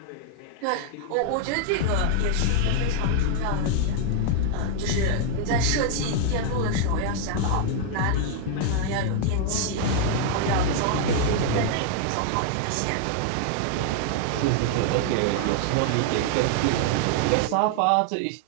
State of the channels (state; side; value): different; both; correlation 0.00